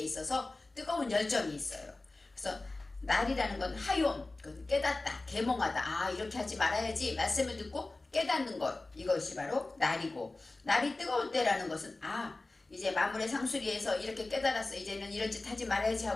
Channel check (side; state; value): right; quieter; 3.1 dB